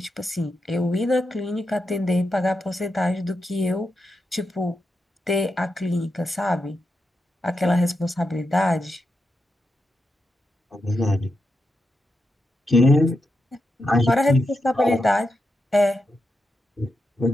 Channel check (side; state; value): both; normal; correlation 0.86